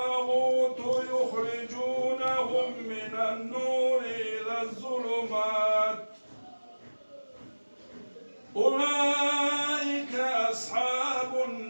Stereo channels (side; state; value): both; inverted; correlation -1.00